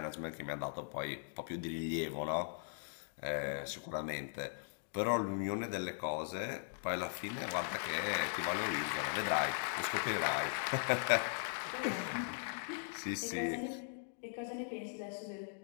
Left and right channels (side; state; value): right; silent; digital silence